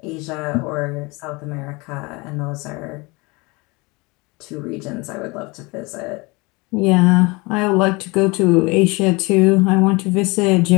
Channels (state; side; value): quieter; right; 25.8 dB